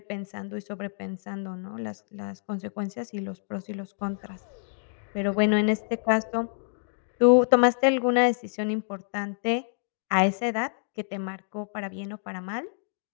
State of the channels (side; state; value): right; silent; digital silence